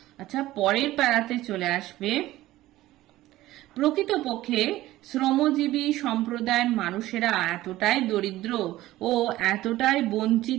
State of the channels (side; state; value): left; quieter; 16.1 dB